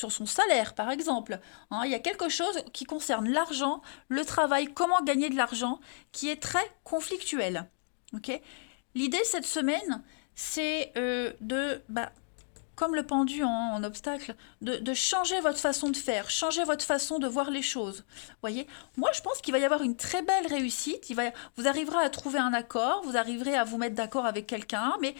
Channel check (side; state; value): right; silent; digital silence